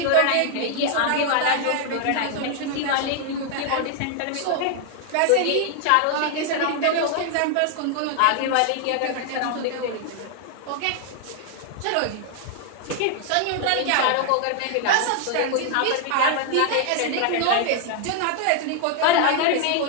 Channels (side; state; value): both; different; correlation 0.00